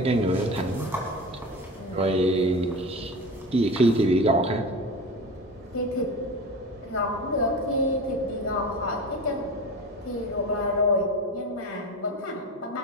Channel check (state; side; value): normal; both; correlation 0.30